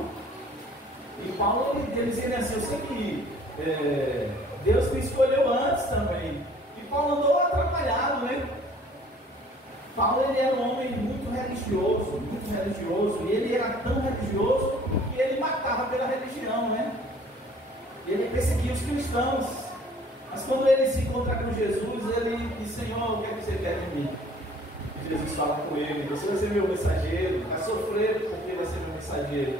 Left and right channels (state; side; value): normal; both; correlation 0.53